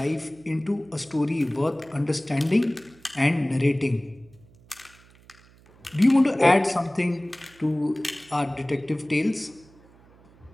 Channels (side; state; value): right; noise; hum, 27 dB below the sound